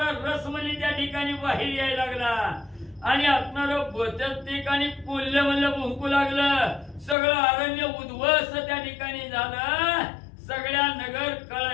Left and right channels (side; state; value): right; drops out; at 7.2 s